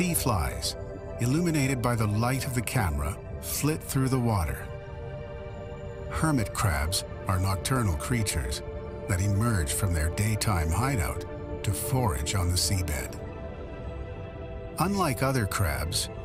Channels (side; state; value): both; identical; correlation 1.00